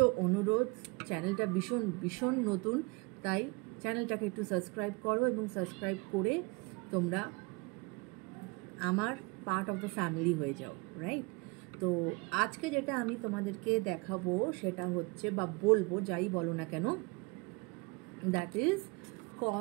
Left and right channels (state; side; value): quieter; left; 28.2 dB